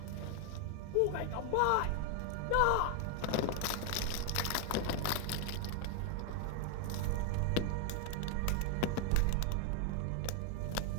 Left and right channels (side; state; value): both; different; correlation 0.00